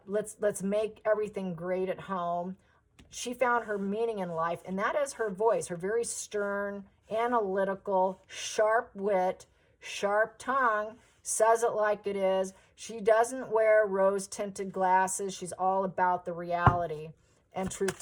make everything great at home. She found her meaning in life, and that is her voice, her very stern, analytical, sharp wit, sharp tongue, says it like it is. She doesn't wear rose-tinted glasses. She's all about the reality and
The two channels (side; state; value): both; identical; correlation 1.00